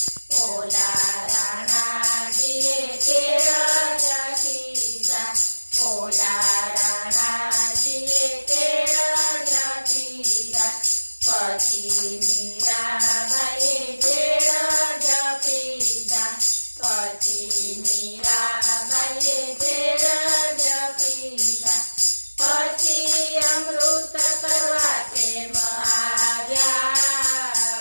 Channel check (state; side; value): inverted; both; correlation -1.00